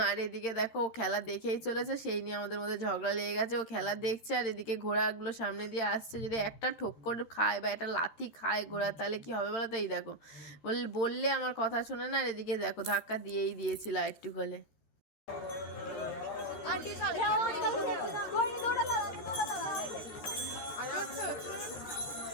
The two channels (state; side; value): late; right; 13 ms